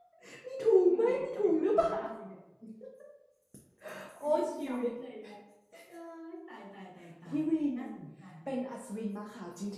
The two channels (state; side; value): identical; both; correlation 1.00